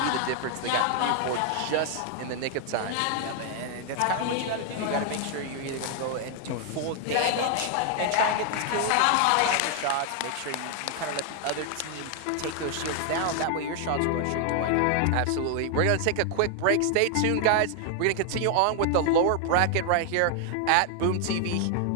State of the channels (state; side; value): different; both; correlation 0.00